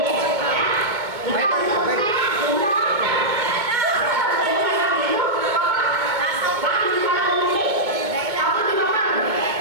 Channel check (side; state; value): left; late; 2.2 ms